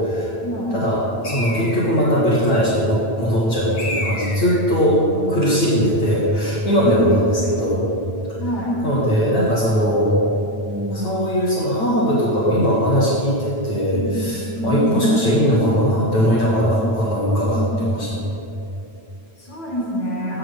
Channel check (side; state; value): right; late; 9.0 ms